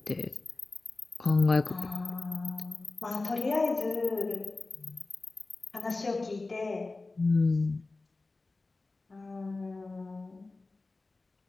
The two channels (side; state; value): right; quieter; 3.4 dB